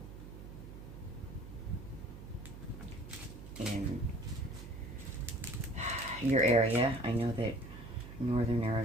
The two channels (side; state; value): right; noise; hum, 13 dB below the sound